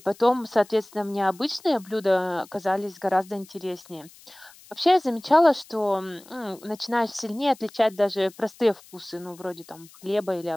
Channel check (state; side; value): noise; left; hiss, 23 dB below the sound